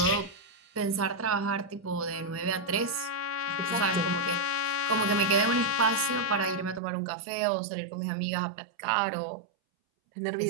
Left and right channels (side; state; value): left; drops out; at 6.8 s